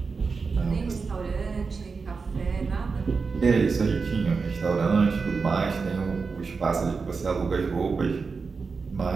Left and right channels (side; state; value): left; quieter; 4.8 dB